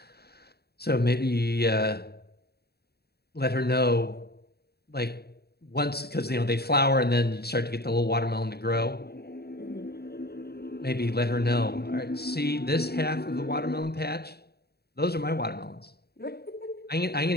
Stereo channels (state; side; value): late; right; 0.47 ms